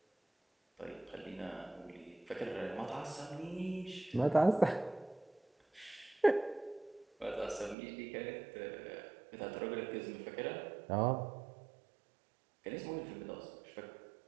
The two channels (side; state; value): left; drops out; at 7.8 s